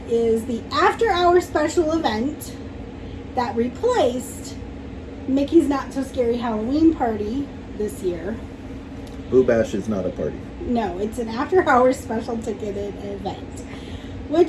is the after-hour special event that replaced Mickey's Not So Scary Halloween Party this year. Oogie Bash is not a party. No, it's an after-hours special ticketed event,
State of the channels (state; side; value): identical; both; correlation 1.00